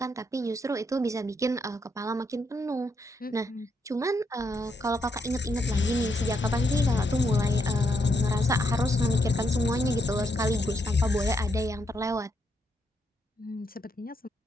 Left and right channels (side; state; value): both; normal; correlation 0.77